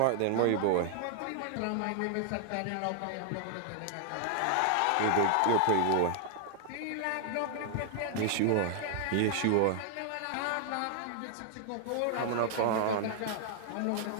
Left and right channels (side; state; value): both; different; correlation -0.01